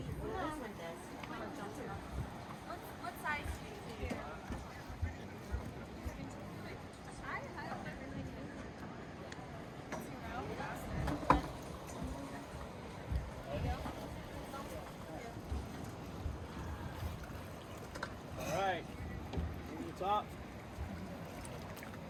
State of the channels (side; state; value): both; identical; correlation 1.00